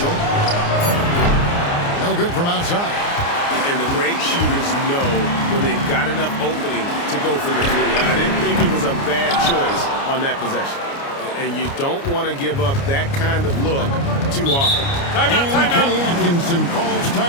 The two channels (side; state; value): right; late; 29 ms